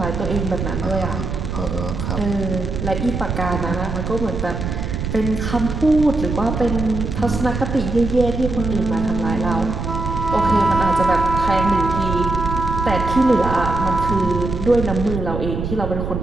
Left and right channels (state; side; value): noise; right; rumble, 4 dB below the sound